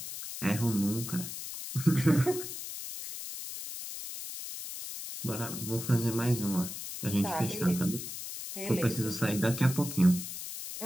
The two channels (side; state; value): left; noise; hiss, 8 dB below the sound